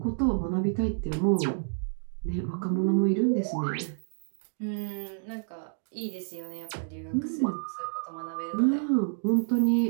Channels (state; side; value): silent; left; digital silence